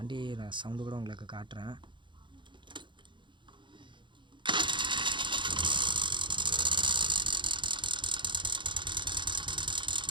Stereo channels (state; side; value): late; left; 0.23 ms